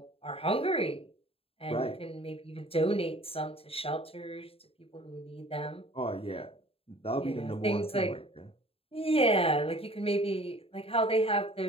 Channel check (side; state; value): right; late; 0.27 ms